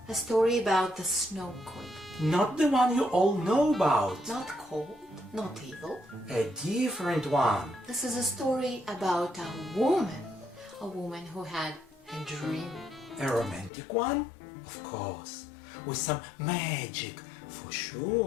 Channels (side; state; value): right; drops out; at 13.7 s